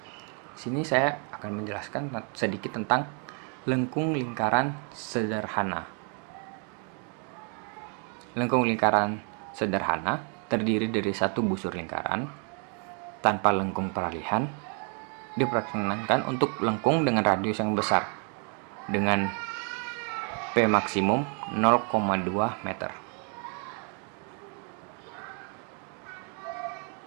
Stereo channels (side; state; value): left; quieter; 39.9 dB